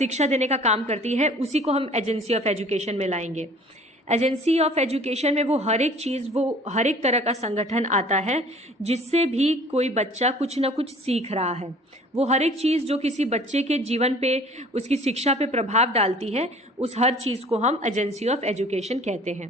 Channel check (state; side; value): normal; both; correlation 0.50